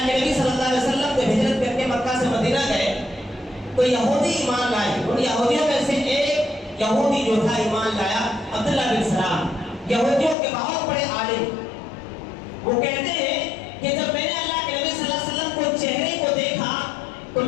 کے نبی صلی اللہ علیہ وسلم جب ہجرت کر کے مکہ سے مدینہ گئے تو یہودی ایمان لائے۔ ان یہودیوں میں سے ایک یہودی جو تھا ایمان لایا، عبداللہ بن سلام، یہودیوں کے بہت بڑے عالم۔ وہ کہتے ہیں کہ جب میں نے اللہ کے نبی صلی اللہ علیہ وسلم کو چہرے کو دیکھا تو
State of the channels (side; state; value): right; drops out; at 10.4 s